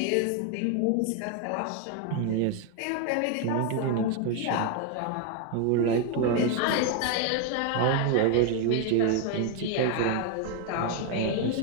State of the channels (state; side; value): different; both; correlation 0.01